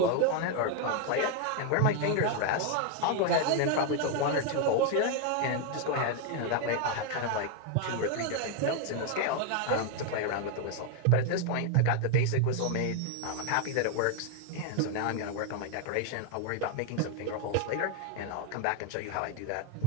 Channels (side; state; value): both; different; correlation 0.01